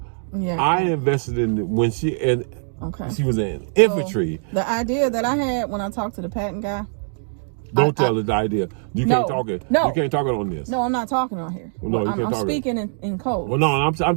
Yeah, I invested in it when she was in infantry. So the idea that I had when I talked to the patent guy. Don't tell her the idea. You can't talk it. No, you can't talk it on this. No, I'm not talking on here. Well, no, I'm speaking in code. Well, no, I'm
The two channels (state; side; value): silent; left; digital silence